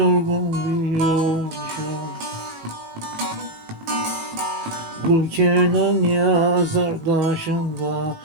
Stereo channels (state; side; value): late; left; 19 ms